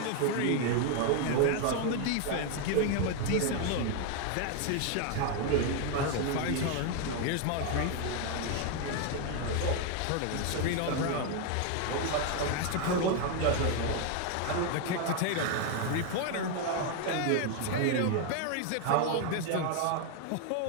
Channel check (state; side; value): different; both; correlation 0.01